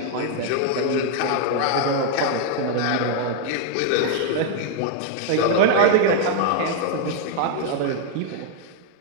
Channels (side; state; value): both; different; correlation 0.00